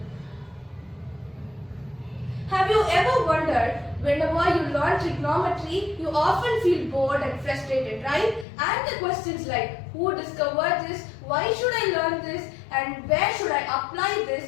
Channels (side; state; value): right; drops out; at 8.5 s